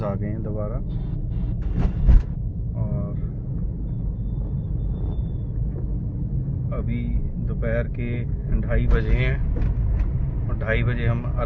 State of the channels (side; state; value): both; identical; correlation 1.00